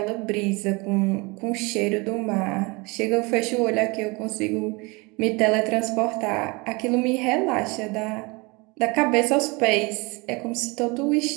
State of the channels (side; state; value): left; quieter; 26.7 dB